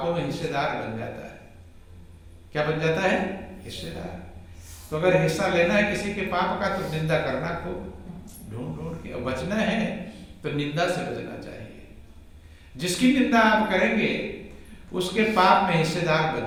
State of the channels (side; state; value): both; identical; correlation 1.00